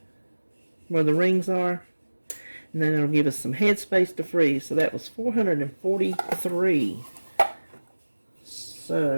where the rings are. And then it'll give us some headspace to freeze. So that was 443.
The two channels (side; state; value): both; inverted; correlation -1.00